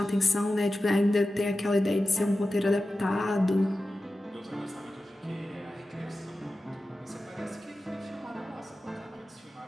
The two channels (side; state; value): both; normal; correlation 0.93